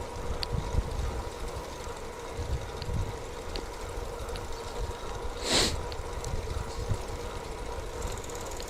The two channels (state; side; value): identical; both; correlation 1.00